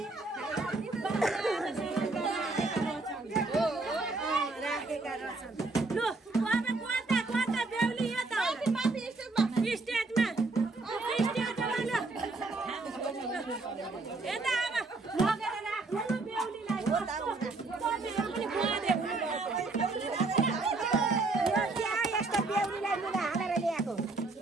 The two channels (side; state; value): left; quieter; 3.4 dB